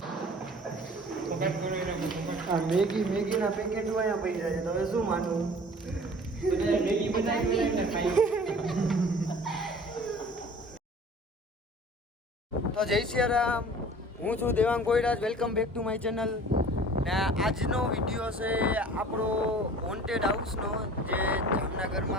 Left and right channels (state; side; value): normal; both; correlation 0.46